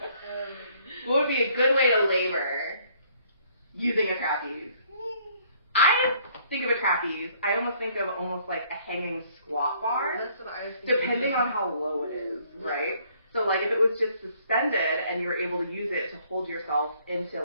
What would be a good way to labor using a trapeze? I think of a trapeze, I almost think of almost like a hanging squat bar. That's what I was thinking. Depending on how low it is, right? So like if it was just suspended and you were able to use it to hold yourself into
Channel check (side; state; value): both; inverted; correlation -0.63